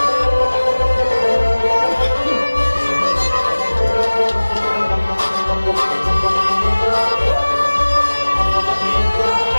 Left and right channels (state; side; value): inverted; both; correlation -1.00